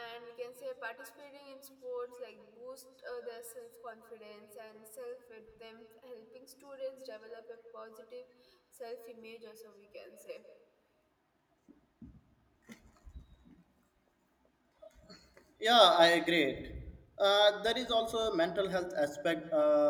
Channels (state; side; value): identical; both; correlation 1.00